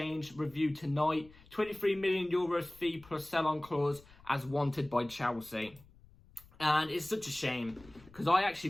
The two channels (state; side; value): noise; left; rumble, 24 dB below the sound